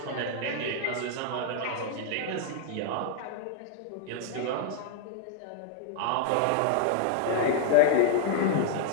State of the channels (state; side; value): different; both; correlation 0.00